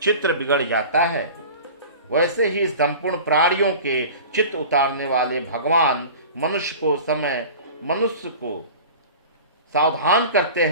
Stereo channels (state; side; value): inverted; both; correlation -0.38